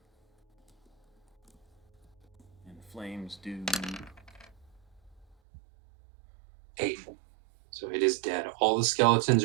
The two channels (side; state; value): left; drops out; at 5.4 s